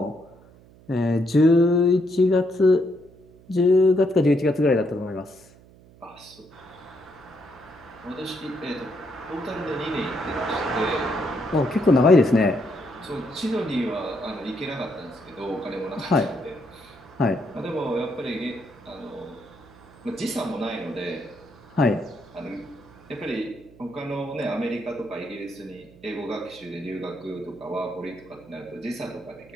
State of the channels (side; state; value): right; noise; hum, 24 dB below the sound